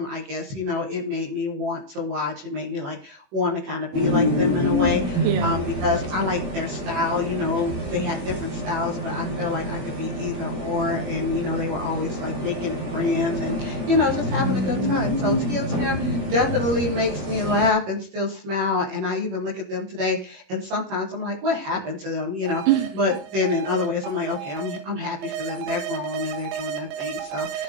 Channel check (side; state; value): left; late; 21 ms